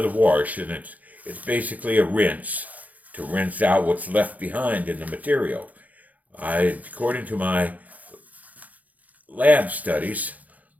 wash, and it's basically a rinse to rinse out what's left behind in the material. According to my lab studies,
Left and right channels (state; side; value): late; left; 0.077 ms